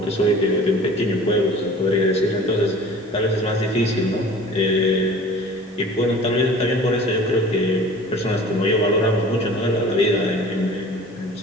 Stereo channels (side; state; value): both; normal; correlation 0.44